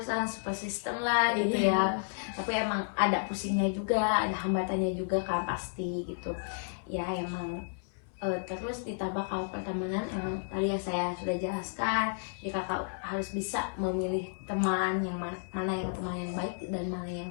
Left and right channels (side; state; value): right; silent; 56 dB below the other